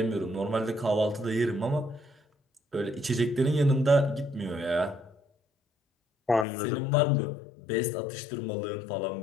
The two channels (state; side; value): drops out; right; at 6.5 s